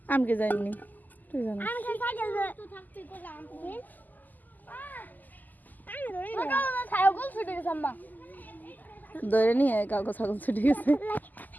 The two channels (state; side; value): late; right; 0.084 ms